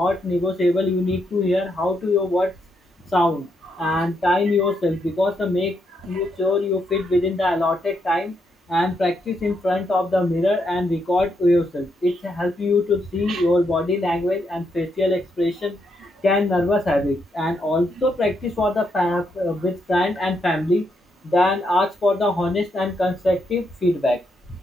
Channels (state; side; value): normal; both; correlation 0.79